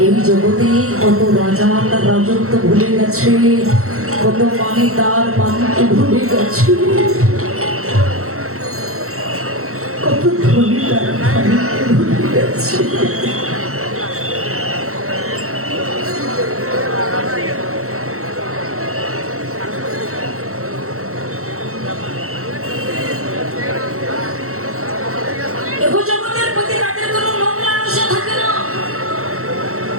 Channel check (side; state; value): left; late; 0.63 ms